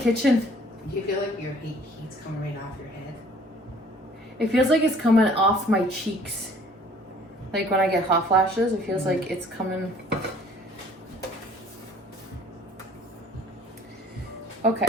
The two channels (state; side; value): normal; both; correlation 0.55